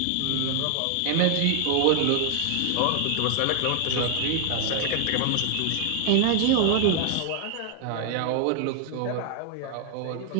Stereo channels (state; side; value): different; both; correlation 0.00